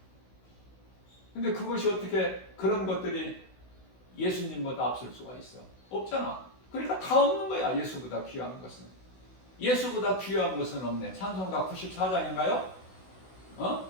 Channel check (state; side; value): late; right; 16 ms